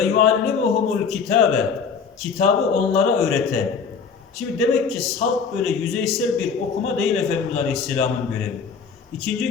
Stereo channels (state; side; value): quieter; right; 5.9 dB